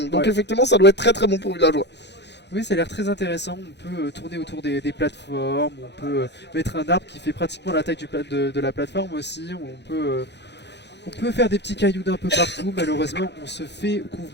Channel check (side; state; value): right; late; 0.50 ms